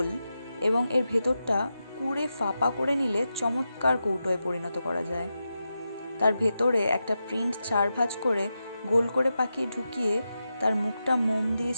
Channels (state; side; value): inverted; both; correlation -0.89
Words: এবং এর ভেতরটা কুড়ে ফাঁপা করে নিলে চমৎকার কৌটোয় পরিণত করা যায়। তার ভেতরে একটা প্রিন্ট 4 ভাঁজ করে গোল করে পাকিয়ে ঢুকিয়ে তার মুখটা মোম দিয়ে